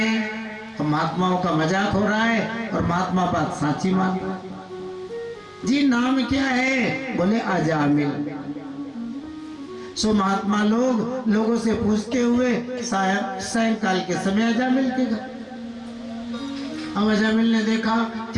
तो महात्माओं का मजाक हो रहा है और महात्मा बात साची मान रहा। जी नाम क्या है? बोले अजामिल। सो महात्मा लोगों से पूछते हुए सायंकाल के समय अजामिल के घर। अब अजामिल ने देखा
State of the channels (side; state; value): both; identical; correlation 1.00